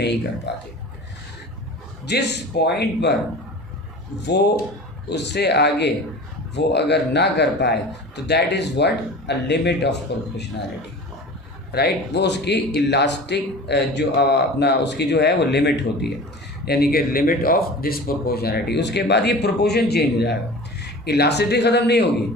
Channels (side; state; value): both; normal; correlation 0.37